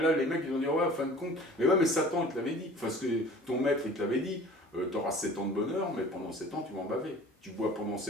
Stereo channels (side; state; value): both; normal; correlation 0.46